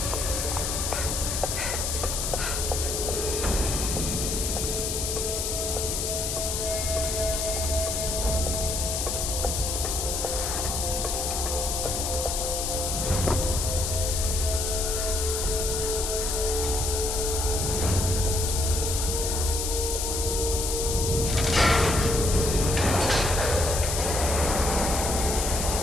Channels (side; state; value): left; noise; hiss, 1 dB below the sound